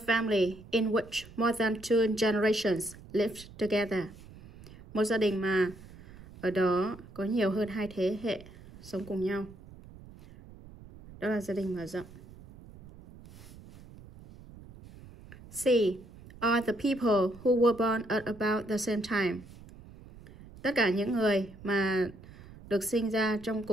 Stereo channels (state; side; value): noise; right; rumble, 19 dB below the sound